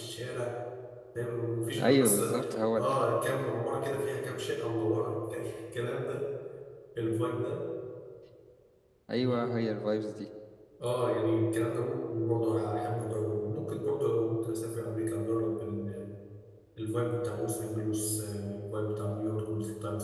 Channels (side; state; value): both; identical; correlation 1.00